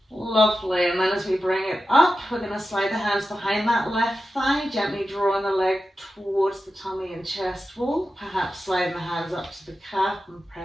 Lovely, and then as we bring it up, we're going to slide the hands behind that left thigh, gently drawing the leg towards the tummy and chest wall, perhaps sliding the hands up to the calf and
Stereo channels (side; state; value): both; normal; correlation 0.92